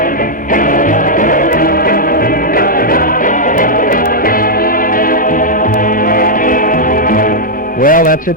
Well, that's it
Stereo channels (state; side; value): normal; both; correlation -0.05